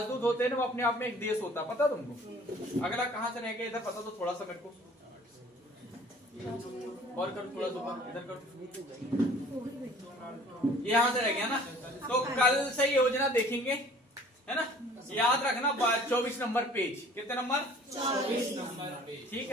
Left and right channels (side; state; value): both; normal; correlation 0.51